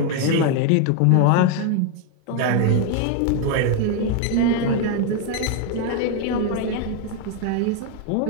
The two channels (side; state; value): both; different; correlation 0.01